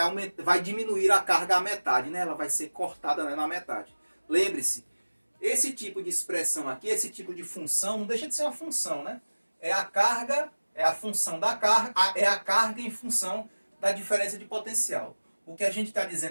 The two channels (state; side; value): inverted; both; correlation -1.00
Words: vai diminuir a carga à metade, né? Ela vai ser cortada, né, na metade. Lembre-se, esse tipo de expressão aqui, esse tipo de função, não deixa de ser uma função, né? é a carga, é a função da carga, é a carga em função da diferença de potencial. O que a gente está